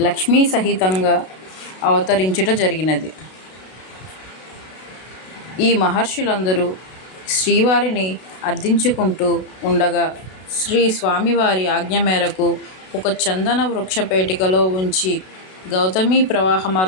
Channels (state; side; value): late; right; 32 ms